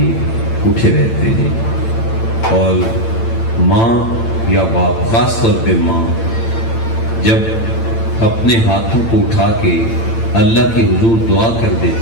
اٹھے رہتے ہیں. اور ماں یا باپ، خاص طور پہ ماں، جب اپنے ہاتھوں کو اٹھا کے اللہ کے حضور دعا کر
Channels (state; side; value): late; right; 8.9 ms